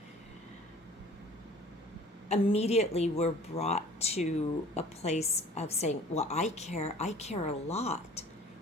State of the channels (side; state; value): both; normal; correlation 0.48